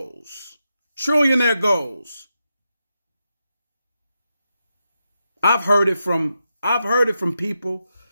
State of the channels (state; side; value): inverted; both; correlation -0.87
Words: trillionaire goals. I've heard it from people